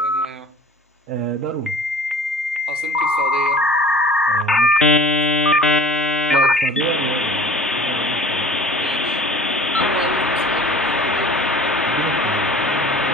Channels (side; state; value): both; normal; correlation 0.44